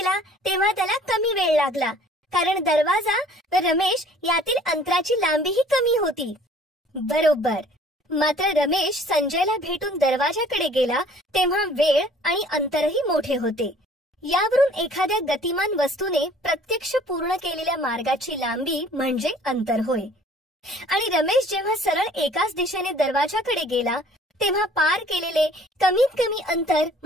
तेव्हा त्याला कमी वेळ लागला, कारण दरवाजा व रमेश यातील अंतराची लांबीही कमी होती. बरोबर. मात्र रमेश संजयला भेटून दरवाजाकडे गेला तेव्हा वेळ आणि अंतरही मोठे होते. यावरून एखाद्या गतिमान वस्तूने प्रत्यक्ष पूर्ण केलेल्या मार्गाची लांबी म्हणजे अंतर होय. आणि रमेश जेव्हा सरळ एकाच दिशेने दरवाजाकडे गेला तेव्हा पार केलेले कमीत कमी अंतर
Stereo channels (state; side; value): normal; both; correlation 0.53